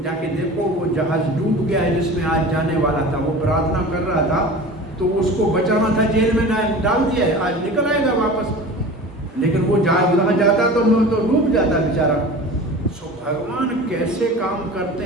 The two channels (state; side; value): normal; both; correlation 0.37